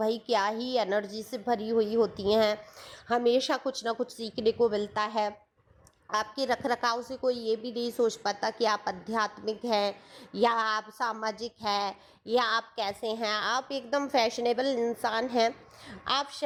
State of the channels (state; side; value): identical; both; correlation 1.00